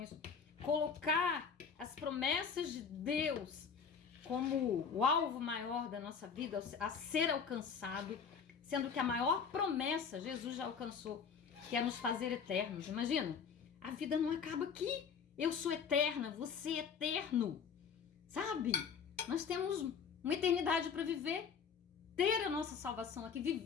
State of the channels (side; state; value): right; quieter; 6.4 dB